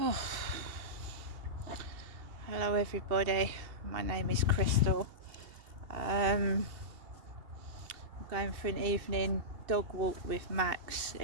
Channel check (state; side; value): late; left; 2.8 ms